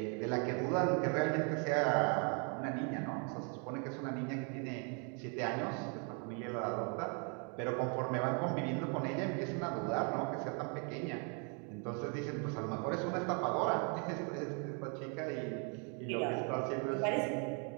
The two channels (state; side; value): quieter; left; 37.9 dB